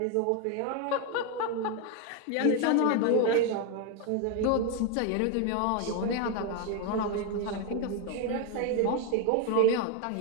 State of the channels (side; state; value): both; different; correlation 0.01